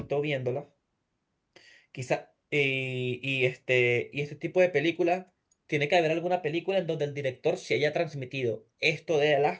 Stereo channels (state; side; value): identical; both; correlation 1.00